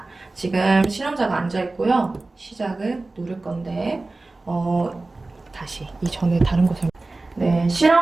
지금 실험자가 앉아있고요. 시작을 누를 건데 다시 이전에 다른 거 네,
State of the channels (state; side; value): quieter; left; 3.2 dB